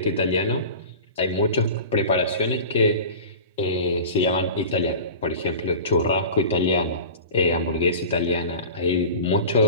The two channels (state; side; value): inverted; both; correlation -0.36